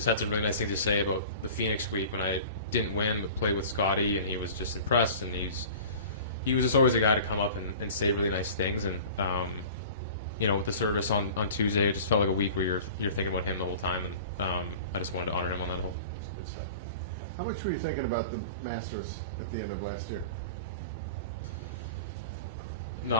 had some really nice things to say about the Phoenix week when I didn't win but played with Scotty, and he was just impressed. And he was just always a guy to come up and say really nice things. And you know, with the service on Tuesday, it just felt like a week where you're thinking about him the whole time, and I just wanted to honor him on that whole. Good stuff. How much were you thinking about the Masters at the end of last year?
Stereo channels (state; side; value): inverted; both; correlation -0.40